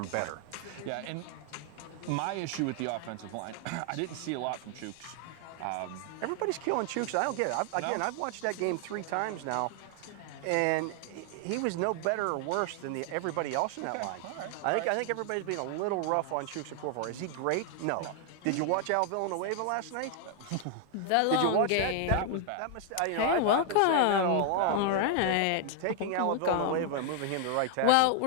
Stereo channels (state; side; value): different; both; correlation 0.00